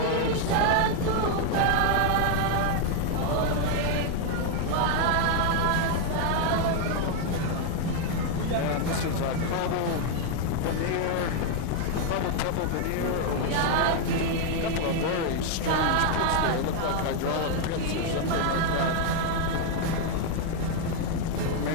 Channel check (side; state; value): both; different; correlation 0.00